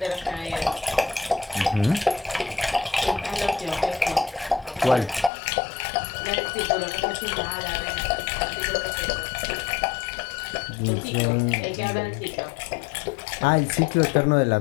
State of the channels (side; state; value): right; drops out; at 5.3 s